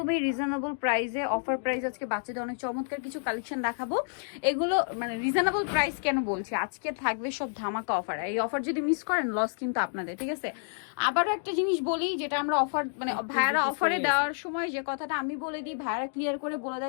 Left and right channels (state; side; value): silent; right; digital silence